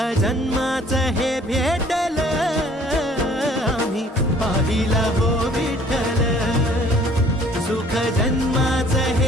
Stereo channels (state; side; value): normal; both; correlation 0.56